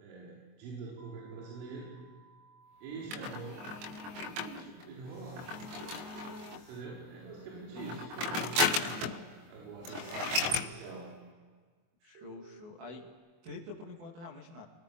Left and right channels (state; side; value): late; left; 24 ms